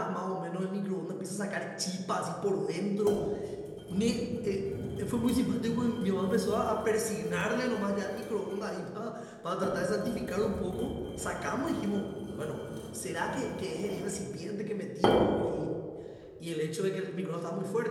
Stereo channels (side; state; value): both; identical; correlation 1.00